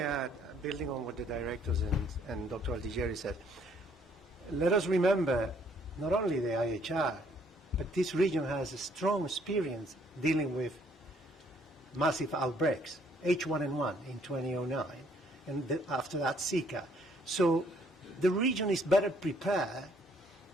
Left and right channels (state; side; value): normal; both; correlation 0.64